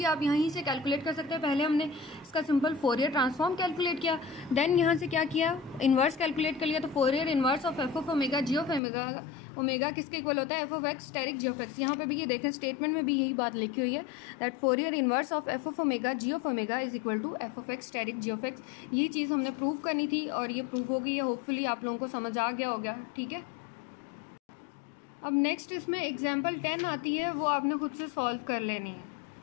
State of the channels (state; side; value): drops out; right; at 8.8 s